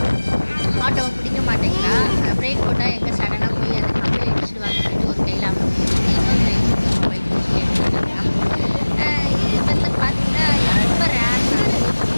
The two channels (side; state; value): both; inverted; correlation -1.00